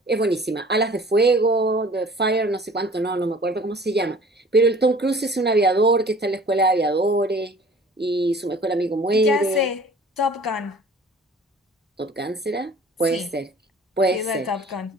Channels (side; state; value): both; normal; correlation 0.48